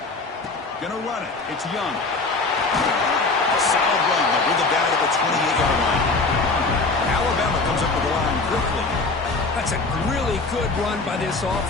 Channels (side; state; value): right; quieter; 3.7 dB